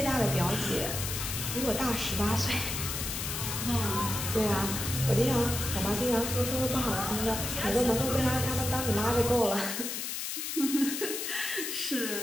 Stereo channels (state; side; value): noise; left; hiss, 4 dB below the sound